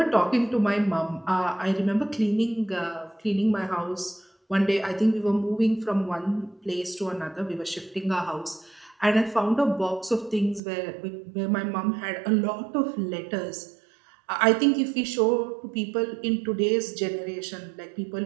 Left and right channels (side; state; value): left; drops out; at 10.6 s